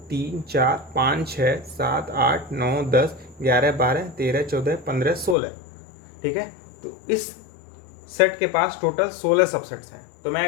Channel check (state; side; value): drops out; right; at 5.4 s